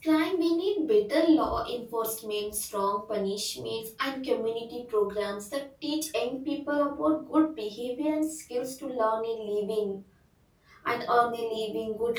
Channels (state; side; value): identical; both; correlation 1.00